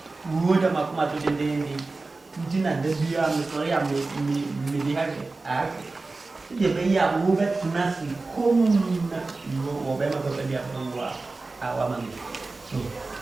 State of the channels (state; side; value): quieter; left; 3.5 dB